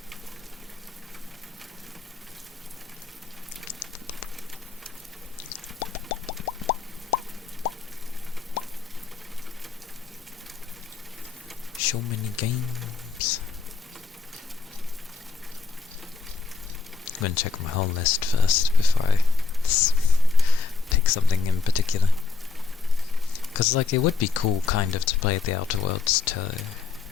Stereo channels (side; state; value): right; quieter; 4.5 dB